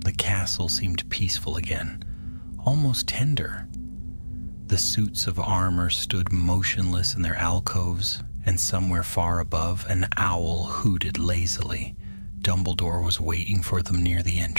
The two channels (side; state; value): both; inverted; correlation -1.00